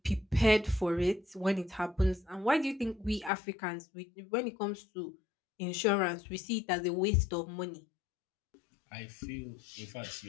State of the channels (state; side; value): drops out; right; at 3.3 s